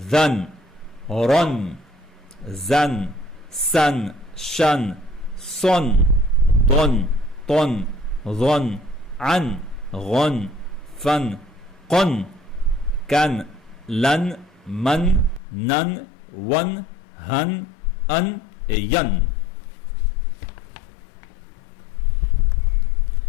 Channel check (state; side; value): drops out; right; at 15.4 s